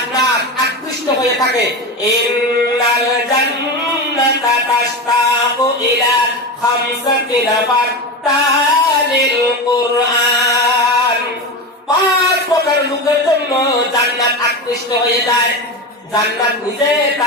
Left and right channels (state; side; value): normal; both; correlation 0.21